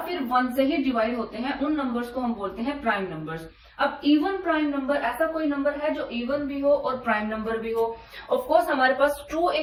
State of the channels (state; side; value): identical; both; correlation 1.00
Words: 1 से ही डिवाइड होते हैं। उन नंबर्स को हम बोलते हैं प्राइम नंबर्स। अब इवन प्राइम नंबर ऐसा कोई नंबर है जो इवन भी हो और प्राइम नंबर भी हो। ऑफ कोर्स हमारे पास 2